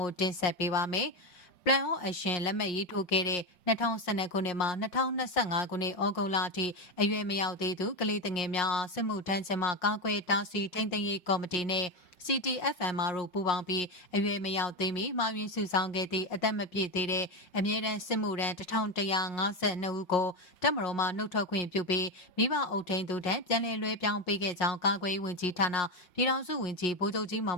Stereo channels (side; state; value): right; late; 5.5 ms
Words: ိုတင်ဆက်ပေးပါမယ်Plan of Action လက်မှတ်ရေးထိုးခဲ့တဲ့2012ခုနှစ်မှ2025ခုနှစ်ဩဂုတ်လအထိအရွယ်မရောက်သေးသူကလေးငယ်များအားစစ်မှုထမ်းခြင်းမှကာကွယ်တားဆီးထိန်းသိမ်းရေးကော်မတီနဲ့ CTFMR တို့ပူးပေါင်းပြီးအရွယ်မရောက်သေးမီမှားယွင်းစုဆောင်းခဲ့သည့်အသက်မပြည့်သေးတဲ့အမြဲတမ်းစစ်မှုထမ်း1152ဦးကိုတပ်မတော်မှနှုတ်ထွက်ခွင့်ပြုပြီးမိဘအုပ်ထိန်းသူထံပြန်လည်လွှဲပြောင်းပေးခဲ့ကြောင်းကာကွယ်ရေးဝန်ကြီးဌာနပြည်ထောင်စုဝန်ကြီးဗိုလ်ချုပ်ကြီးမောင